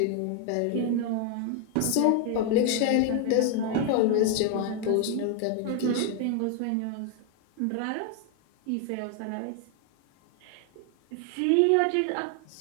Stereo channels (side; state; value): both; different; correlation 0.00